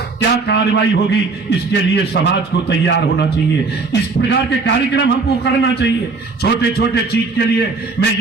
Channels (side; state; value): left; quieter; 4.1 dB